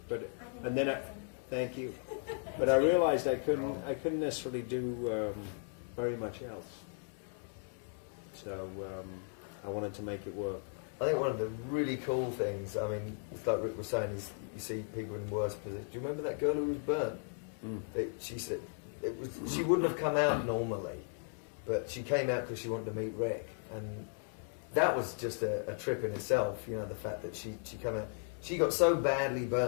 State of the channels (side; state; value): right; silent; 54 dB below the other